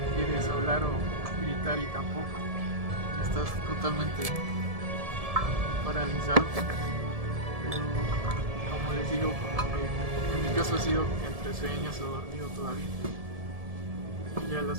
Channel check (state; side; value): late; left; 1.7 ms